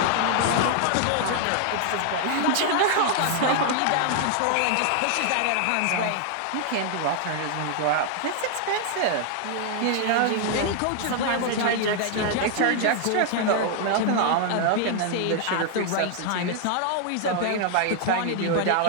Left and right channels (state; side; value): different; both; correlation 0.00